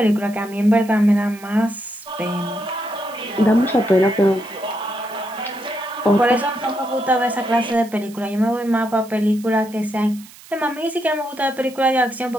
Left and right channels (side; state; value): right; noise; hiss, 21 dB below the sound